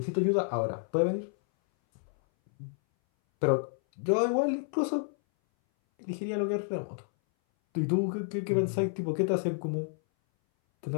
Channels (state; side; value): silent; right; 58 dB below the other